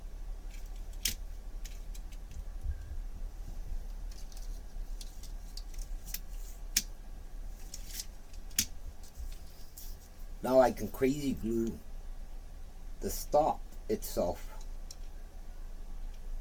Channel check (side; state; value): both; identical; correlation 1.00